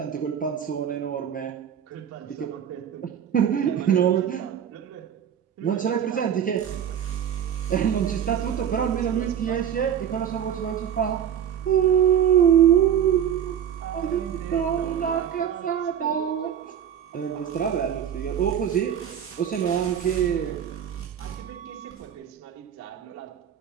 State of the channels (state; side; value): quieter; left; 9.0 dB